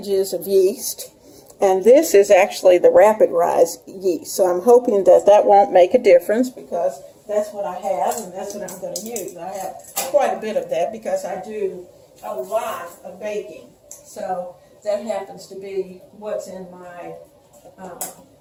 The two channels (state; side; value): identical; both; correlation 1.00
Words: of yeast, and this is actually the rapid rise yeast, so I'm hoping that won't make a difference, because that's what I have and that's what I'm going to use. I have quite a bit of that because I do a lot of baking, so that happens to be what's in my